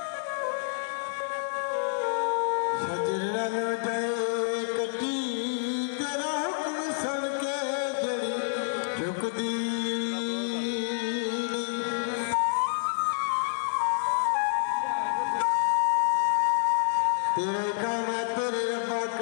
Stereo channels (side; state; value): right; silent; 59 dB below the other